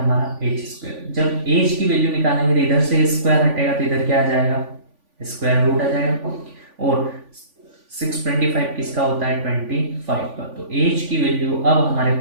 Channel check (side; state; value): left; late; 3.5 ms